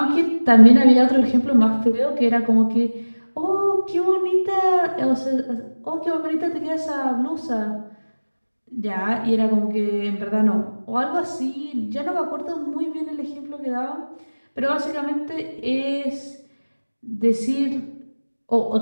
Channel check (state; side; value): inverted; both; correlation -1.00